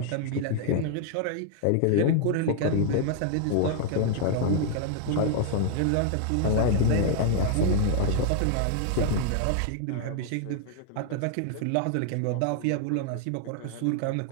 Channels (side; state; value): both; different; correlation 0.00